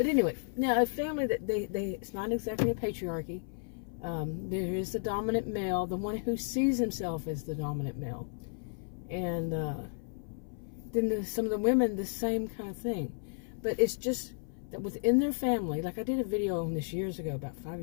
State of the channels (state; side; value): silent; right; 56 dB below the other